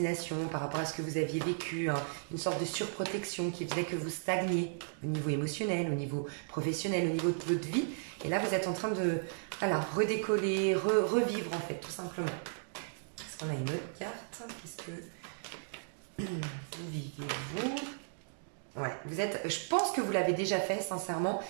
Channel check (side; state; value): left; silent; digital silence